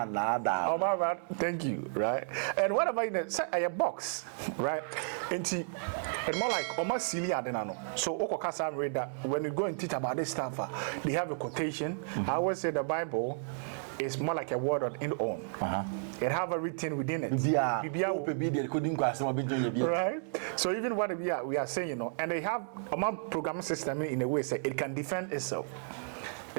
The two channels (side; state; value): left; silent; digital silence